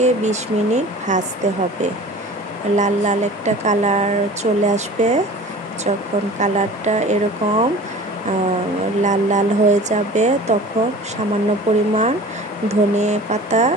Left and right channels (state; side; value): normal; both; correlation 0.41